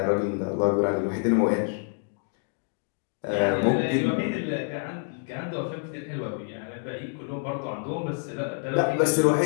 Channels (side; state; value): right; silent; 60 dB below the other